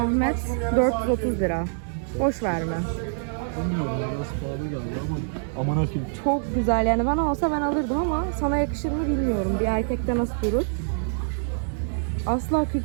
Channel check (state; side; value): silent; left; digital silence